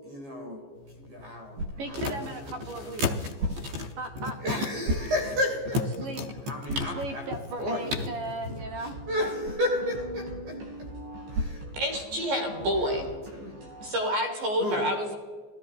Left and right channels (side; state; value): left; late; 14 ms